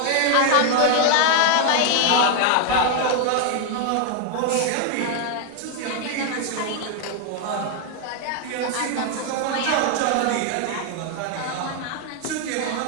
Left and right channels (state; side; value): different; both; correlation 0.01